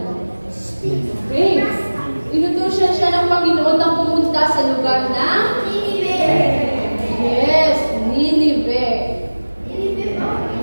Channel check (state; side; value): inverted; both; correlation -1.00